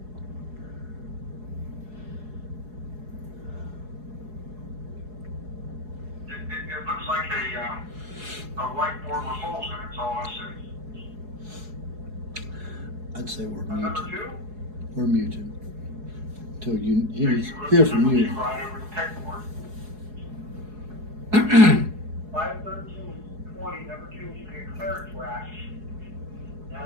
It looks like a whiteboard with holes in it, that's all I see. I'd say we're Number muted. 2, We're muted. Till you hear Hear from you. Right over the pegboard. 51320 number 2, you see a clearance rack. It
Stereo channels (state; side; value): late; left; 4.7 ms